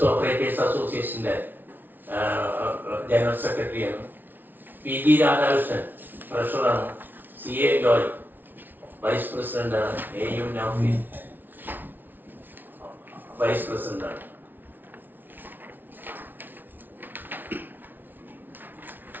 ഓപ്പറേറ്റേഴ്സ് അസോസിയേഷന്റെ ജനറൽ സെക്രട്ടറിയാണ്. PG രാധാകൃഷ്ണൻ ട്രഷററാണ്. CA ജോയ് വൈസ് പ്രസിഡന്റാണ്. AU നൗഫീൻ വൈസ് പ്രസിഡന്റാണ്.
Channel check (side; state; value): left; late; 0.089 ms